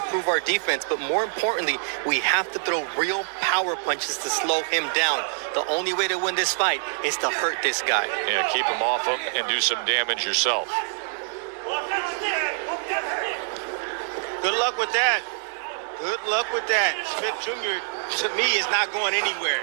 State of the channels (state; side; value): silent; left; digital silence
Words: our defense, but more importantly, we have to throw real power punches to slow him down. The only way to win this fight is to hurt this guy. Yeah, keep him off him and do some damage yourself. good luck with that. Good luck with that. Smith Jr., to me, is not going anywhere.